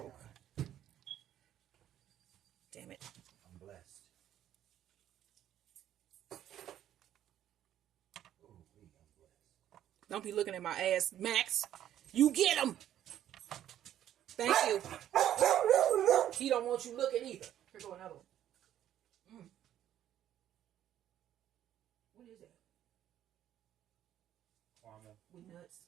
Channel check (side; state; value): left; quieter; 11.4 dB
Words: Damn it. I'm blessed. Ooh, I'm blessed. Don't be looking at my ass, Max. You get him. Thank you. He don't want you looking either. Here go another one. What is that? Caramel. With nuts,